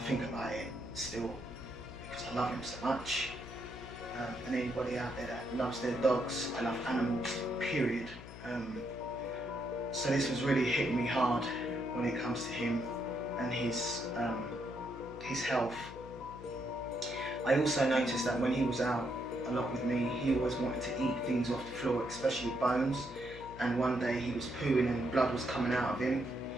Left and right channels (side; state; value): left; noise; hum, 14 dB below the sound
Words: think about it still, because I love him so much. And anybody out there that loves their dogs, I love animals, period. So this was really hitting me hard when it comes to him and his health. I also noticed that when he was out a lot with me, he always wanted to eat things off the floor, especially bones. And one day he was pooing and blood was coming out of him.